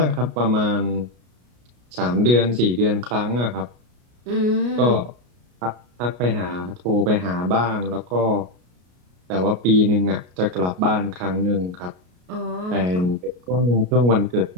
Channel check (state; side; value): late; left; 33 ms